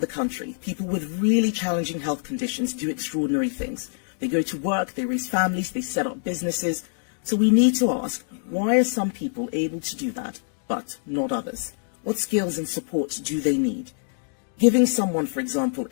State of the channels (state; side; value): silent; right; digital silence